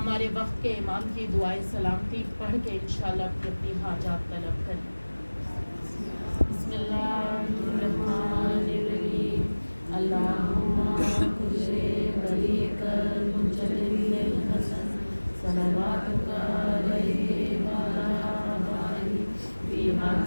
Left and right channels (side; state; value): both; inverted; correlation -1.00